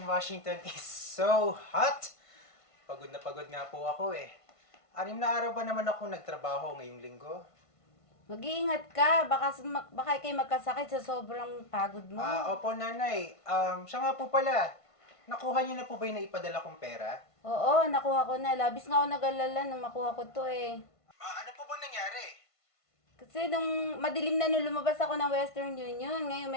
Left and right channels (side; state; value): right; late; 1.5 ms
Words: Washington is so hot! Pagod na pagod nga po ako eh. 6 na araw ba naman ako nagtrabaho ngayong linggo? Mag-iingat ka. Baka kayo magkasakit sa sobrang pagod mo. Opo, Nanay. Siya nga po pala. Nakuha niyo na po ba yung naipadala kong pera? Oo, nakuha ko na. Labis nga ako nag-alala nung makuha ko to eh. Ano po ba nangyari? Kasi nung madilim na nung lumabas ako ng Western Union, ngayon